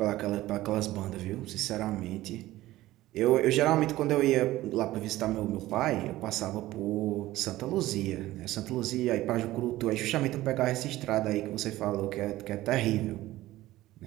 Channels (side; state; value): left; quieter; 16.4 dB